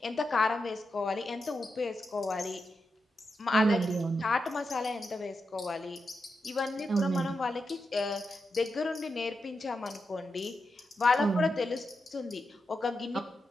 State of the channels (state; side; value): normal; both; correlation 0.87